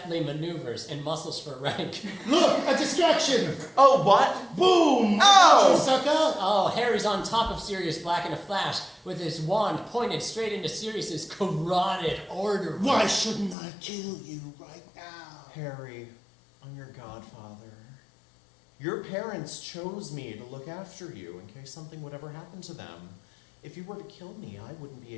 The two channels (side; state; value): right; drops out; at 13.6 s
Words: maneuvers and muscles for rank. Look, a distraction. Oh, what? Boom! Oh! You sucker! Oh, Harry's on top of Sirius Black in a flash with his wand pointed straight into Sirius's carotid artery. Why shouldn't I kill you right now? Harry, I'm your godfather. Your parents chose me to look after you in case something would ever happen to them. If you were to kill me, I wouldn't be